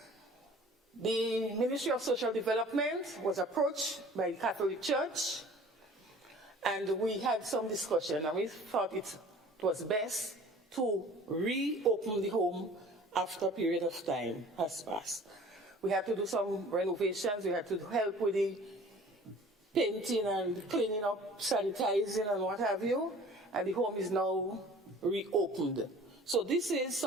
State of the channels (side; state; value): both; normal; correlation 0.48